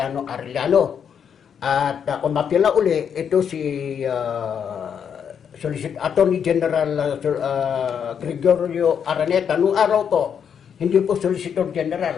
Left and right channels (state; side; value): quieter; right; 7.7 dB